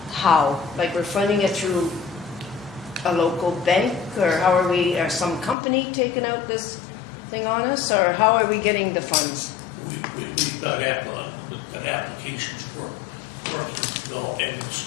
how? Like we're funding it through a local bank, or how are we, or some company taking out this thing on us, or how are we getting the funds? We've got applications for working to go, and it's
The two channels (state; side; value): drops out; right; at 5.6 s